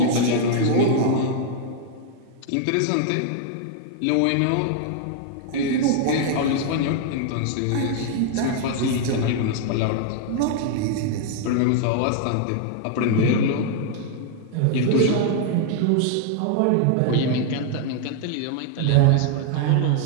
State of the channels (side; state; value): both; different; correlation 0.00